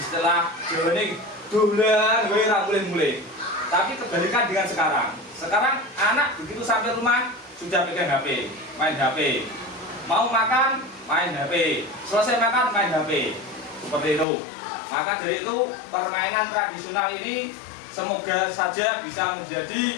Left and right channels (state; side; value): drops out; right; at 14.2 s